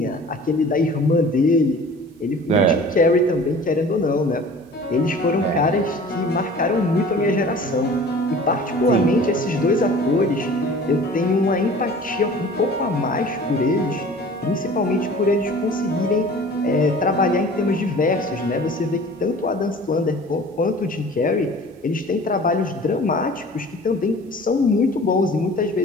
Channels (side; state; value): both; normal; correlation 0.44